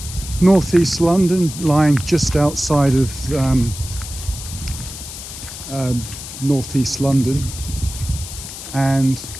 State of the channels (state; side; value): noise; left; hiss, 11 dB below the sound